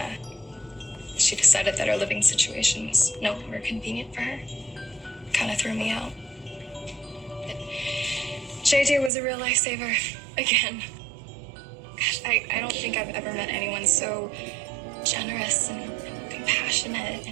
decided that our living situation was no longer convenient for her. Kind of threw me out. But JJ was a real lifesaver, again. Gosh, I don't think I've ever met anyone so generous and compassionate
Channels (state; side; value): drops out; left; at 9.1 s